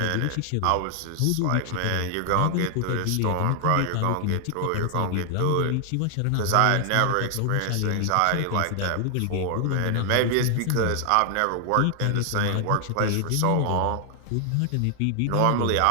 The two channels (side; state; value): both; different; correlation 0.00